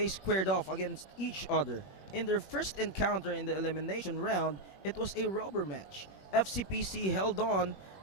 squared off against each other. In their first encounter in the elimination round, it was a rubber match. FCPC held on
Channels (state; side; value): late; right; 21 ms